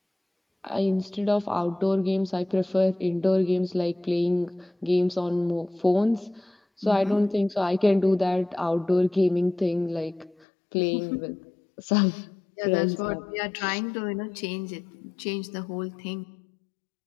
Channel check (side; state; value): right; drops out; at 10.5 s